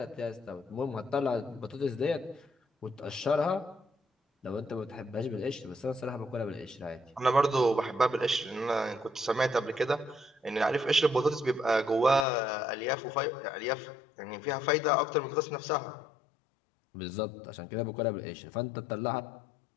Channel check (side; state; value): right; drops out; at 12.2 s